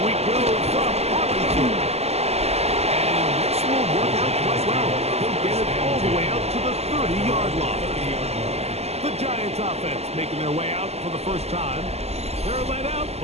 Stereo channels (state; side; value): late; left; 0.30 ms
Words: we go from Arlington. And this will work out quite well. He'll get it all the way out to the 30-yard line. The Giants offense making their way out for the first time. They're led out